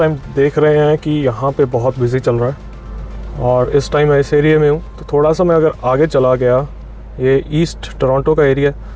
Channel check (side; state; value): both; identical; correlation 1.00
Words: देख रहे हैं कि यहाँ पे बहुत बिज़ी चल रहा है, और इस टाइम मैं इस एरिया में हूँ। तो थोड़ा सा मैं अगर आगे चला गया, ये ईस्ट टोरंटो का एरिया,